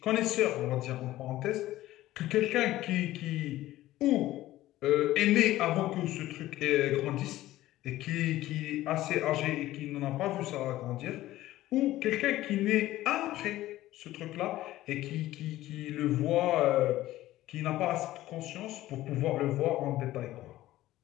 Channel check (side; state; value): right; quieter; 15.5 dB